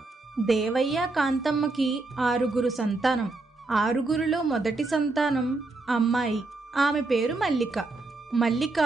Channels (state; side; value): quieter; left; 3.3 dB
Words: దేవయ్య, కాంతమ్మకి 6 సంతానం. 6లో మొదటి సంతానం అమ్మాయి. ఆమె పేరు మల్లిక. మల్లిక